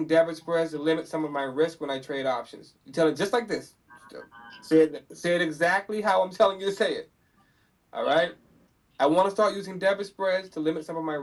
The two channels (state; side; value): identical; both; correlation 1.00